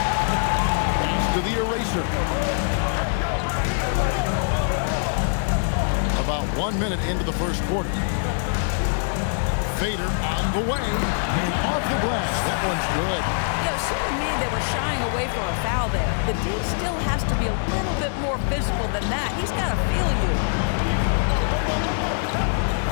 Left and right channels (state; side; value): silent; right; digital silence